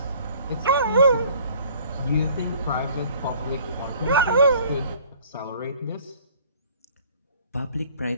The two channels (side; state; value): both; inverted; correlation -0.54